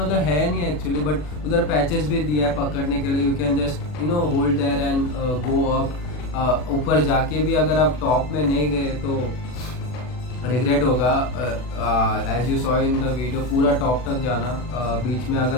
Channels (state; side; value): late; right; 40 ms